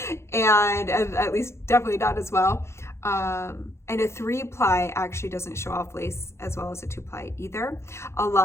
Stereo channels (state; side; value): late; right; 0.13 ms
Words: and at least definitely not as well. And a 3-ply actually doesn't show off lace as well as a 2-ply either. A